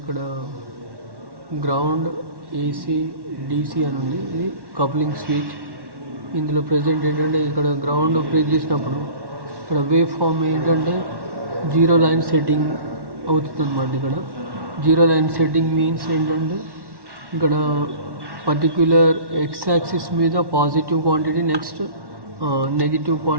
గ్రౌండ్ ఏసీ డీసీ అని ఉంది. ఇది కప్లింగ్ స్విచ్. ఇందులో ప్రజెంట్ ఏంటంటే ఇక్కడ గ్రౌండ్ ప్రెస్ చేసినప్పుడు ఇక్కడ వేవ్ ఫామ్ ఏంటంటే 0 లైన్ సెట్టింగ్ అవుతుంది అన్నమాట. ఇక్కడ 0 లైన్ సెట్టింగ్ మీన్స్ ఏంటంటే ఇక్కడ పర్టిక్యులర్ ఎక్స్ యాక్సిస్ మీద positive quantity, next negative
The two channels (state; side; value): late; left; 1.1 ms